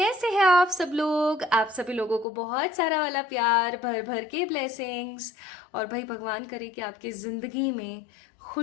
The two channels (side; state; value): right; drops out; at 2.2 s